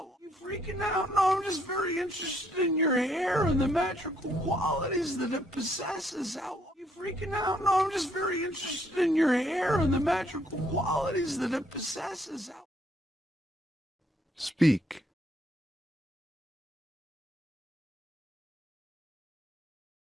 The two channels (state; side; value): normal; both; correlation 0.69